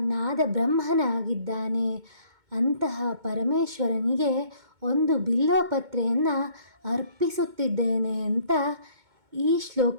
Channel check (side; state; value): left; late; 2.2 ms